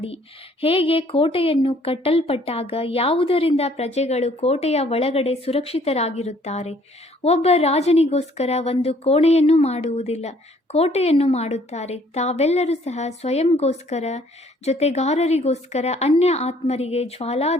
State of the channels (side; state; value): both; normal; correlation 0.61